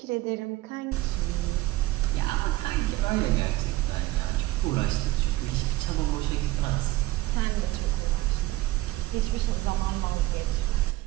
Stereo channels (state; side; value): quieter; left; 18.1 dB